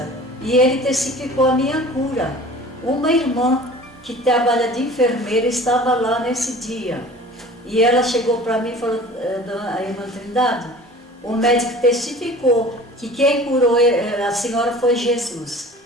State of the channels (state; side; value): normal; both; correlation 0.43